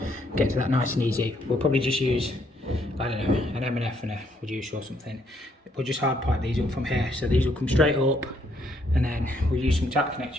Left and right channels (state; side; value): normal; both; correlation 0.71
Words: get to that nice and easy. We'll probably just use, I don't know, an M&F and a reducer or something. We'll just hard pipe these up from here, so these will come straight up, and then we'll use some tap